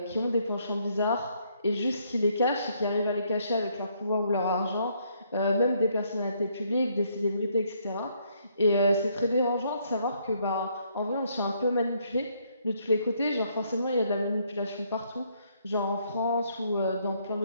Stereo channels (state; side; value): inverted; both; correlation -0.70